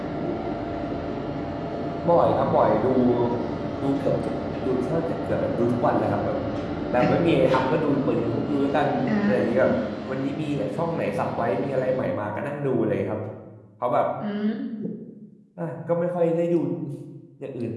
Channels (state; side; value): identical; both; correlation 1.00